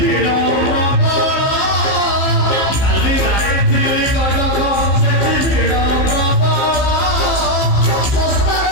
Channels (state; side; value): late; right; 15 ms